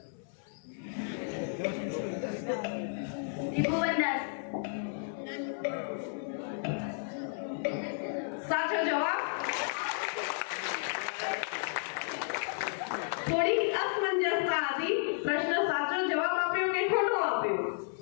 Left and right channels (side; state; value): right; silent; 56 dB below the other